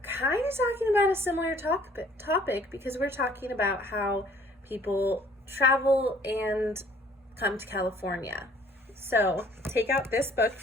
kind of talking about a similar topic because we're talking about how people travel and come to California. So take out this book,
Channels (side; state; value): both; normal; correlation 0.57